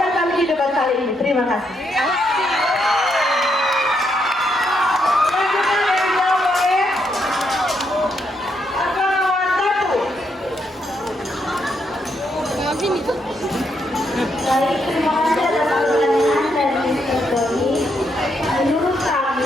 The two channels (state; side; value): normal; both; correlation 0.77